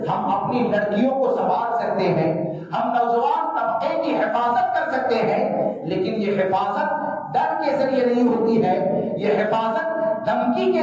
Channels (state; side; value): identical; both; correlation 1.00